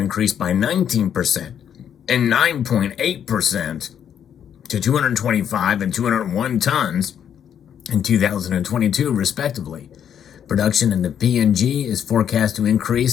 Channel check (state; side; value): quieter; right; 9.0 dB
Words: by 19% and 9.8% to 225 and 201 tons in 2022, respectively. Production in the PNG is forecast to